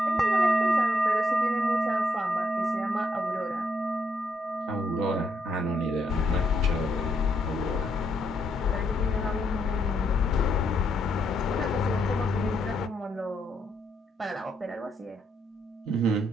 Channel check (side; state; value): both; normal; correlation 0.76